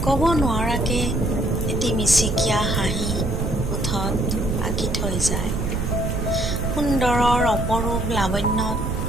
ক'ব নোৱাৰাকে এটি মিচিকীয়া হাঁহি ওঠত আঁকি থৈ যায়। সুন্দৰৰ অপৰূপ লাৱণ্যত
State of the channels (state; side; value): noise; right; rumble, 2 dB below the sound